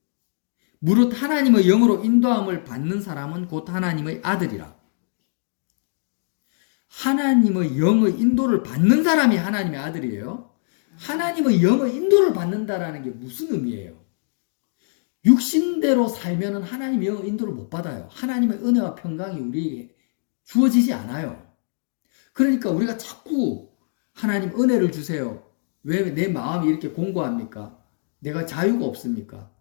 무릇 하나님의 영으로 인도함을 받는 사람은 곧 하나님의 아들이라. 하나님의 영의 인도를 받는 사람이 하나님의 아들이에요. 하나님의 영의 인도를 받는다라는 게 무슨 의미예요? 육신대로 살면은 하나님의 영의 인도를 못 받아요. 하나님의 은혜와 평강이 우리에게 주어지지 않아요. 그러니까 우리가 자꾸 하나님 은혜를 주세요. 왜 내 마음이 이렇게 공고합니까? 내가 자유가 없습니까?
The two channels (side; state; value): right; silent; digital silence